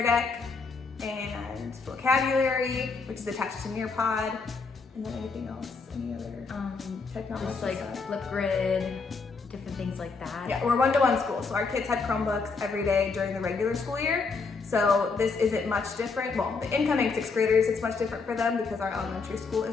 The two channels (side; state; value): right; quieter; 4.5 dB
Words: Deck, and Vocabulary, which is attached to Nearpod, and then anything else, any other technology Just like stuff? Flipgrid, different things like that. Yeah, we're one-to-one school, so our kids had Chromebooks every day during the regular school year. So this isn't much different. Well, the incoming 6th graders, it's much different for them because our elementary school